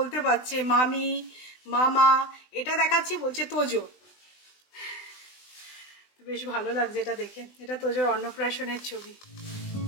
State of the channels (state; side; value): late; right; 20 ms